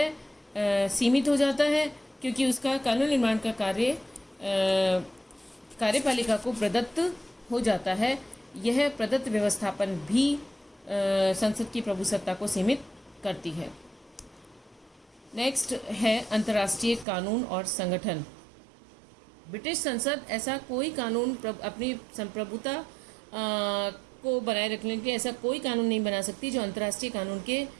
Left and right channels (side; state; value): left; drops out; at 17.1 s